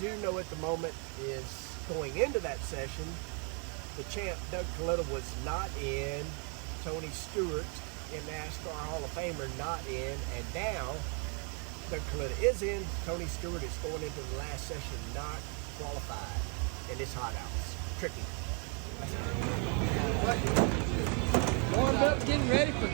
know at the moment is going into that session, the champ Doug Kalitta was not in, Tony Stewart in NASCAR Hall of Famer not in, and now Doug Kalitta is in. Tony Stewart is going into the last session not qualified, and it's hot out. It's tricky. Warmed up, getting ready for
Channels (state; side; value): quieter; left; 37.6 dB